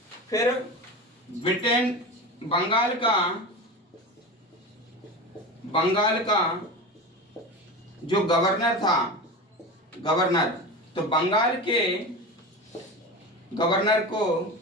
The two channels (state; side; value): normal; both; correlation 0.27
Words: फिर ब्रिटेन बंगाल का जो गवर्नर था, तो बंगाल के गवर्नर को